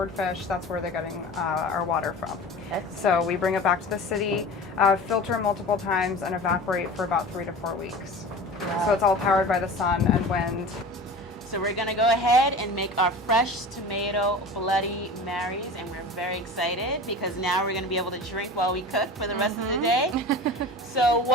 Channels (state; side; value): normal; both; correlation 0.35